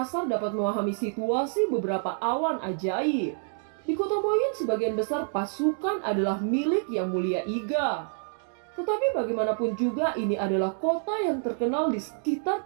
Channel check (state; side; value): silent; left; 60 dB below the other